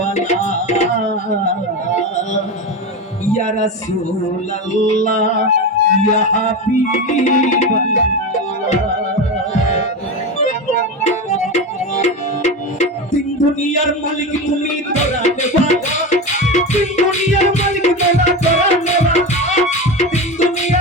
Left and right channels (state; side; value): normal; both; correlation 0.21